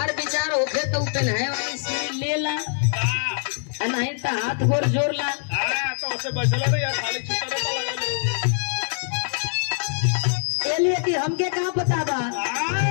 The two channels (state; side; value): silent; right; 57 dB below the other